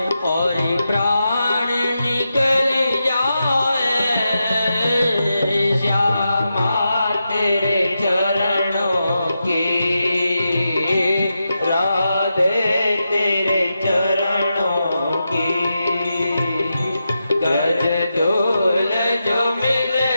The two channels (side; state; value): both; inverted; correlation -0.88